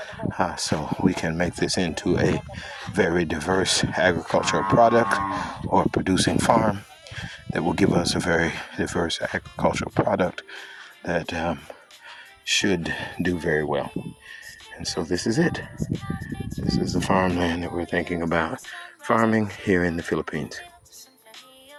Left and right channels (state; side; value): identical; both; correlation 1.00